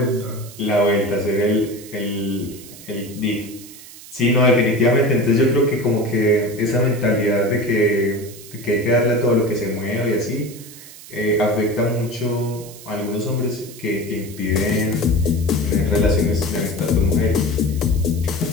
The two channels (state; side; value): noise; right; hiss, 17 dB below the sound